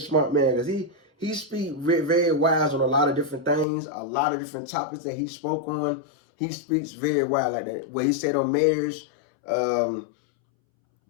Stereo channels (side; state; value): right; drops out; at 3.7 s